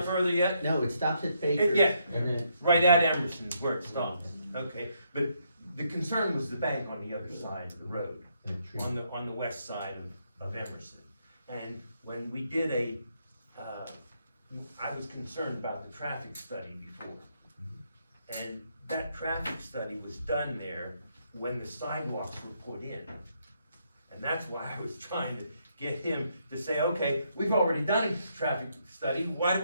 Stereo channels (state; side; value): inverted; both; correlation -0.75